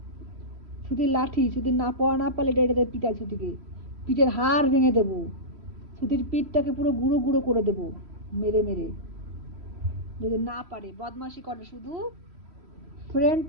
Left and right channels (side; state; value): left; late; 3.1 ms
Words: ছুটির লাঠি, ছুটির না পড়া না পারলে এটা এটাতে পিটাই ছুটিকে। পিঠের হাড় ভেঙে দেবো। ছুটির পিঠটাকে পুরো গুঁড়ো গুঁড়ো করে দেবো মেরে মেরে, যদি না পারে। বদমাশি করে শুধু। ফ্রেন্ড